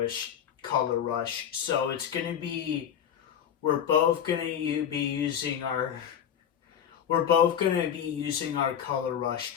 So it's going to be, we're both going to be using our color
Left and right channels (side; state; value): right; quieter; 9.0 dB